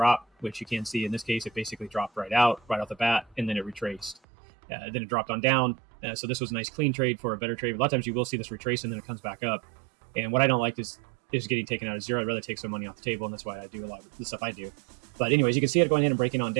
which you can see in this case, it basically dropped right off the bat, and then it retraced. Then it dropped on down. So this was a nice clean trade for a better trade. A lot of times you will see this retrace and then it comes back up. And what I don't like is getting taken out of zero. I'd rather take some money off the table, and that's why I do a lot of the stuff I do. But anyways, you can see it going in and breaking on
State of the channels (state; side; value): drops out; left; at 4.2 s